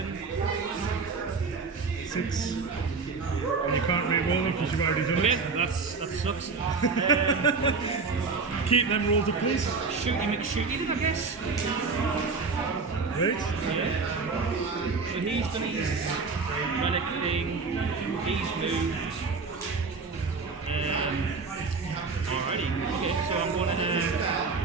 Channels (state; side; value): quieter; left; 4.5 dB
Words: 6. And you can't re-roll them because you've already done Okay, it. that sucks. Keep them rolled up, please. Shooty McShooty then, I guess. Right. So he's done his relic thing, he's moved. Alrighty, okay, so I'm